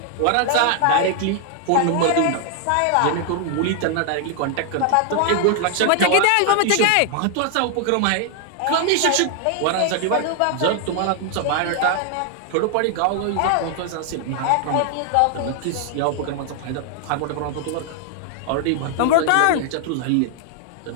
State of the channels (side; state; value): both; different; correlation 0.00